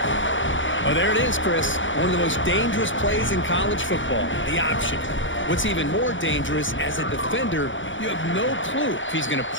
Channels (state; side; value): late; right; 0.56 ms